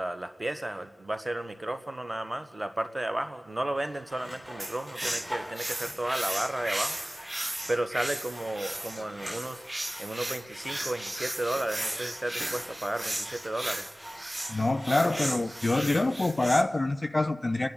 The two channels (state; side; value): normal; both; correlation 0.97